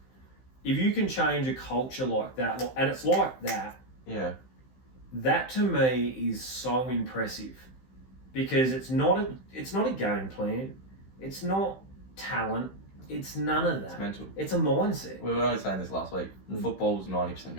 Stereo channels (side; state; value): right; late; 15 ms